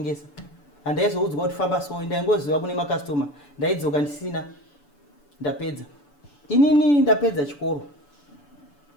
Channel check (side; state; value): right; late; 6.9 ms